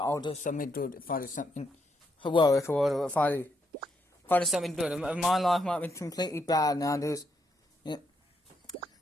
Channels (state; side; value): normal; both; correlation 0.78